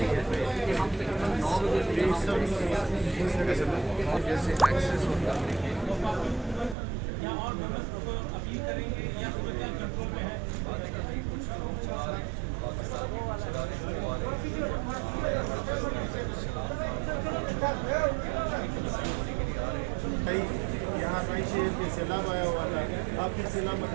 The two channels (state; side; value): drops out; left; at 6.8 s